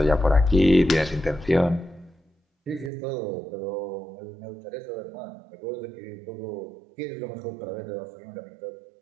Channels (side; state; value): left; drops out; at 2.9 s